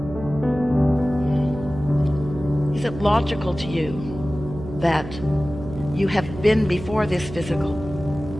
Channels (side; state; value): right; noise; hum, 11 dB below the sound